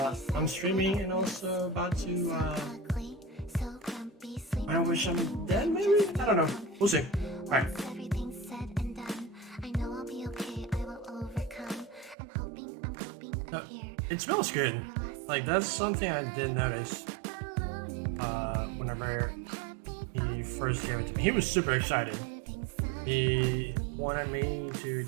I'm streaming and also about to. I wish I'm dead, maybe? I don't know. We'll see. Alright. It smells good. Like, that's something I did notice whenever he first gave it to me. He was super excited. He wanted me to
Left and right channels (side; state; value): left; drops out; at 12.2 s